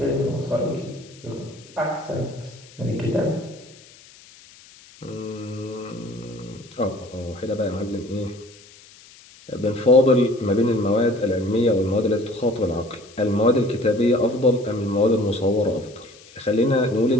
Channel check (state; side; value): noise; left; hiss, 23 dB below the sound